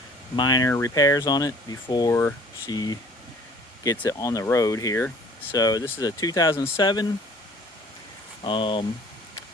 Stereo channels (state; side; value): normal; both; correlation 0.52